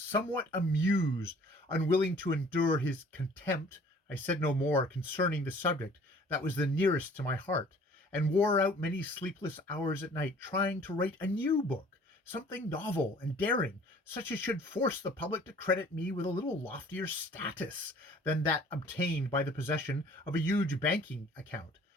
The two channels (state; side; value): normal; both; correlation 0.52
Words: amused. Unwilling to endure his contempt, I said no more concerning the subject that was the nearest to my heart, and wore out many sleepless hours at night trying to write a new book, something novel and daring, such as should force the public to credit me with a little loftier status than that obtained by the possession of a huge banking account.